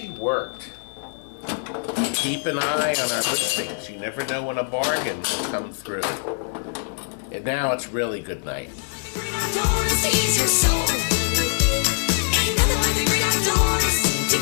worked. Keep an eye on our listings. You never know when a bargain will come through. And now it's really good night. Great outdoors feeds your soul. Ain't nothing like the great outdoors to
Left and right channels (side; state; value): right; silent; digital silence